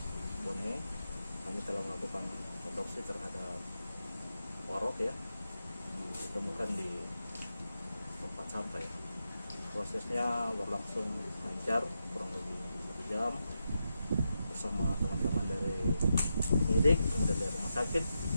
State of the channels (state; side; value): inverted; both; correlation -0.87